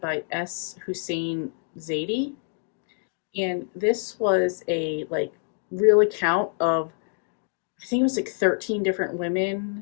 by S. Hussein Zaidi. And this was a real account of, I think it was 13 different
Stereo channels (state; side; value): silent; right; 61 dB below the other